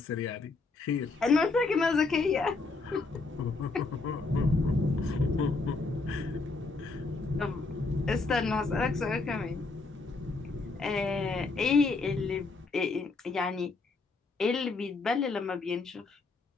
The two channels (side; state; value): right; quieter; 3.8 dB